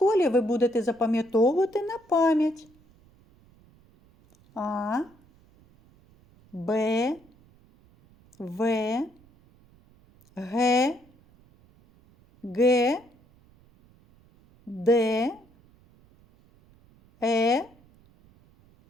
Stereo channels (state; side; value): noise; right; rumble, 30 dB below the sound